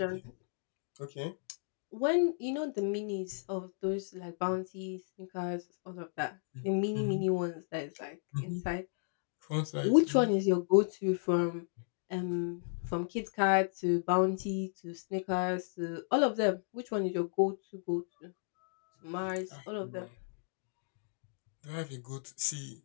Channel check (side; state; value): right; silent; digital silence